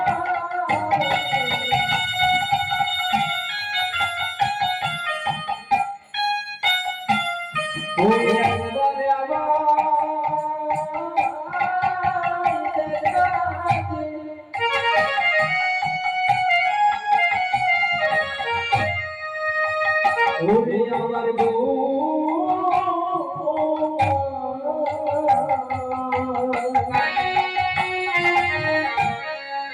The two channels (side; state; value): both; identical; correlation 1.00